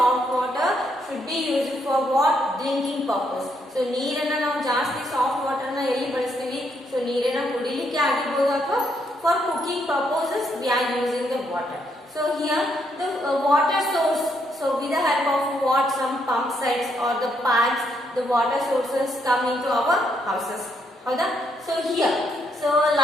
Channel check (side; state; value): both; normal; correlation 0.75